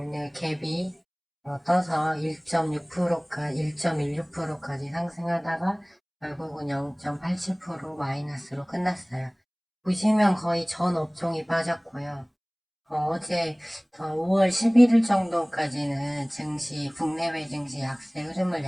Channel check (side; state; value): both; identical; correlation 1.00